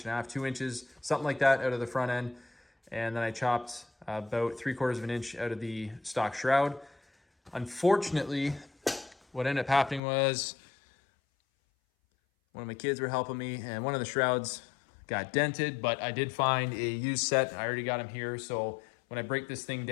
inches, 2 inches, something like that out of the front end. And then I chopped about 3/4 inch out of the stock shroud. Unfortunately, what ended up happening was one of my kids were helping me and one of the shrouds got dented, but I did find a used set. I already got them here. So when I break this thing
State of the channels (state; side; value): drops out; right; at 10.0 s